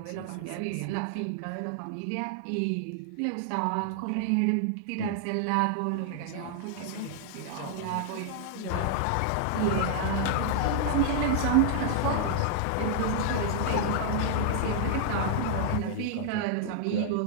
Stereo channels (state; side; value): different; both; correlation -0.01